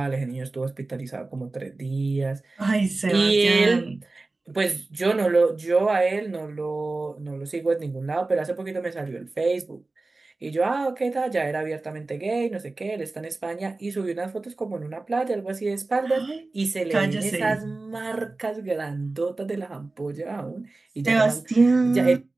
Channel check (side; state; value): left; quieter; 3.3 dB